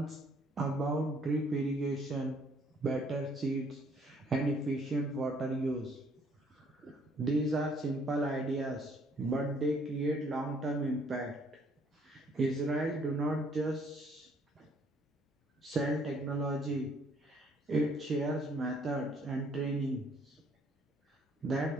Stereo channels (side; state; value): both; normal; correlation 0.63